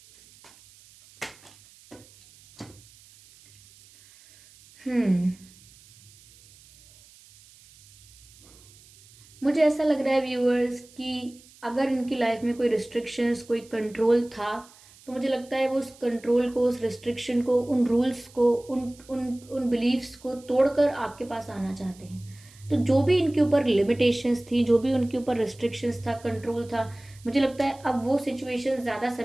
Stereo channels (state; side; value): noise; right; hiss, 25 dB below the sound